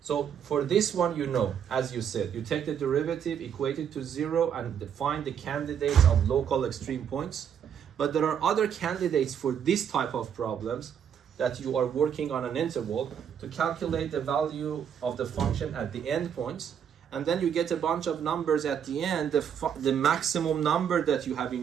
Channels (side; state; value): left; quieter; 8.3 dB